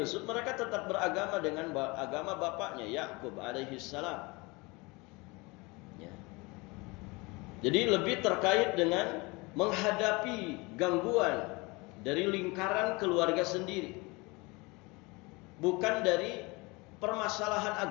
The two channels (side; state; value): right; quieter; 25.5 dB